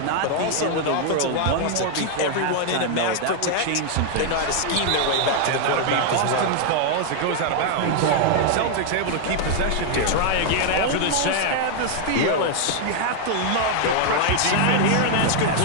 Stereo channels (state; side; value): different; both; correlation 0.00